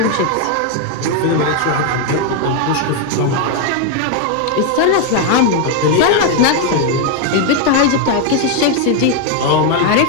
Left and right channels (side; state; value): both; different; correlation 0.01